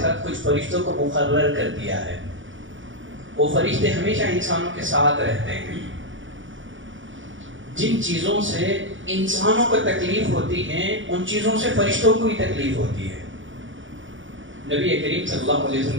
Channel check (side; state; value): left; late; 0.56 ms